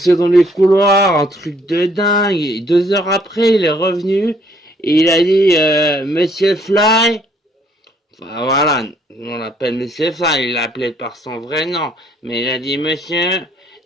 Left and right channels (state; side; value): normal; both; correlation 0.64